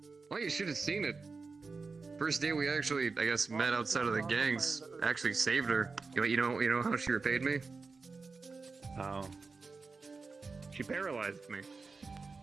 Well, you should have seen it. First day we actually, I guess, met outside of the gangs. Actually saved her. You know how she repaid me? How? She paralyzed me.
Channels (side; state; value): left; quieter; 4.3 dB